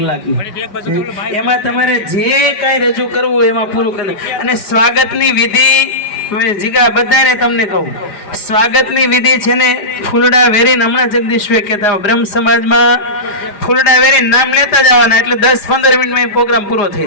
એમાં તમારે જે કાંઈ રજૂ કરવું એમાં પૂરું કરવું. અને સ્વાગતની વિધિ જીગા બધાને તમને કહું, સ્વાગતની વિધિ છે ને ફૂલડા વેરીને, હમણાં જગદીશભાઈ કહેતા બ્રહ્મ સમાજમાં ફૂલડા વેરીને નામ લેતા જવાના, એટલે 10-15 મિનિટમાં પ્રોગ્રામ પૂરો થઈ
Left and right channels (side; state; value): right; late; 4.9 ms